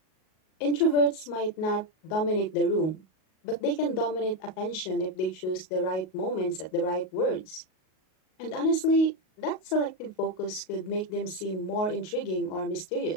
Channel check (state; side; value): late; right; 38 ms